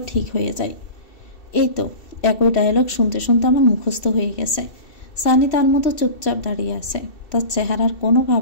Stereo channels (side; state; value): right; late; 2.7 ms